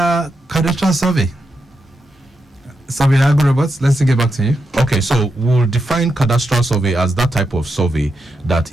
survey? Surveyor Agwu, let's get back to you. Okay, so we'll define cadastral survey as that type of survey that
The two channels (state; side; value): normal; both; correlation 0.85